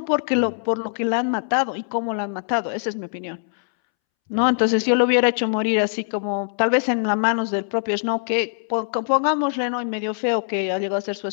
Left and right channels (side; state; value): right; silent; 64 dB below the other